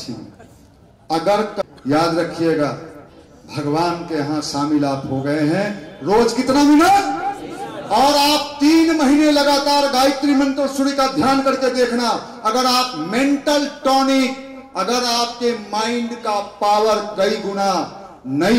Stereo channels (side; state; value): both; identical; correlation 1.00